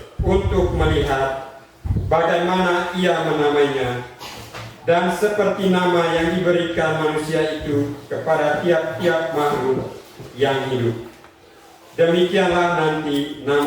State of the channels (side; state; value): both; identical; correlation 1.00